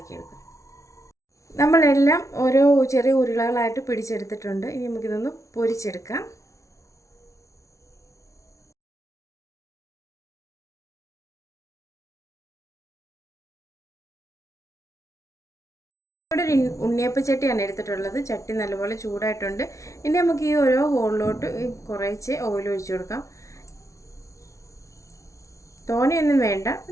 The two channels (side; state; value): right; late; 0.15 ms